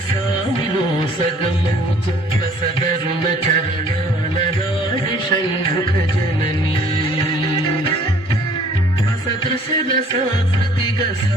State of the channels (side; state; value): both; normal; correlation 0.56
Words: సామిలో సగమూచు రసదరుణ చరణాల నాడి షణ్ముఖ జననీ సదృశల సాకృతిగ